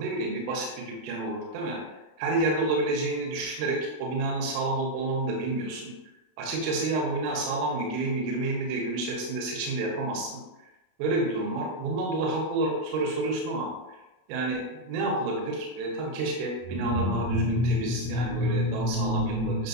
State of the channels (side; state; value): left; late; 32 ms